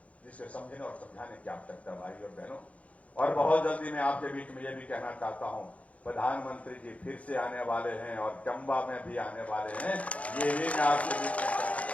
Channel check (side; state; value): right; late; 0.066 ms